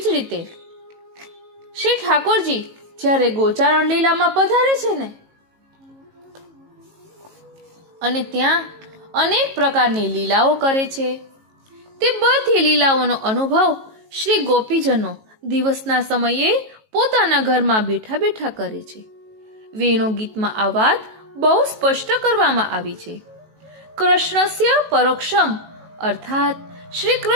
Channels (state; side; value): late; left; 18 ms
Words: જ રીતે શ્રી ઠાકોરજી જ્યારે ગોચારણ લીલામાં પધારે છે ને, અને ત્યાં અનેક પ્રકારની લીલાઓ કરે છે, તે બધી લીલાઓનો અનુભવ શ્રી ગોપીજનો દિવસના સમયે પોતાના ઘરમાં બેઠા બેઠા કરે છે. વેણુ ગીતમાં આ વાત બહુ સ્પષ્ટ કરવામાં આવી છે. કૃષ્ણસ્ય પરોક્ષમ અર્થાત શ્રી